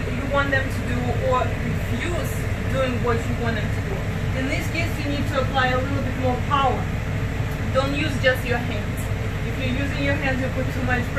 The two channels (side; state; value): both; identical; correlation 1.00